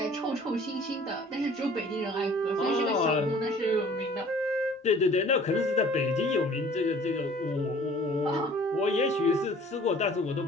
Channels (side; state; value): both; normal; correlation 0.51